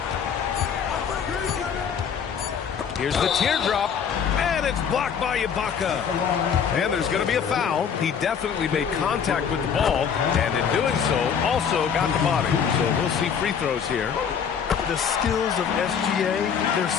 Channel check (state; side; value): quieter; right; 7.2 dB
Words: Here's the teardrop. And it's blocked by Ibaka. And there's going to be a foul. He definitely made contact with the ball, and in doing so, also got the body. So we'll see free throws here. The skills of SGA, they're